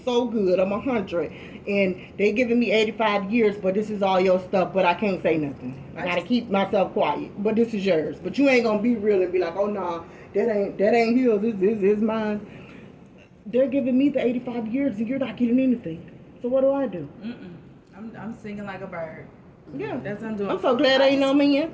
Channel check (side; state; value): both; identical; correlation 1.00